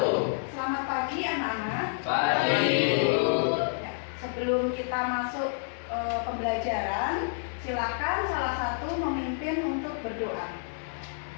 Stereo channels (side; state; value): right; silent; digital silence